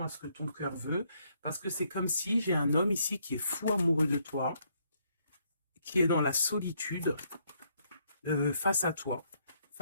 à ce que ton cœur veut, parce que c'est comme si j'ai un homme ici qui est fou amoureux de toi, qui est dans la solitude face à toi,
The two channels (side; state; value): both; inverted; correlation -0.71